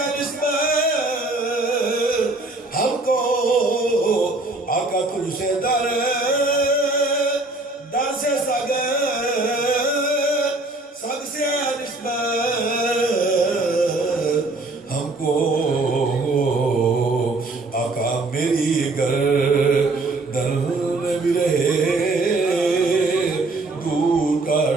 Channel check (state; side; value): quieter; left; 3.1 dB